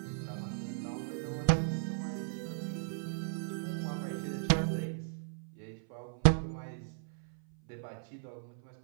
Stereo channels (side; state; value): left; silent; 54 dB below the other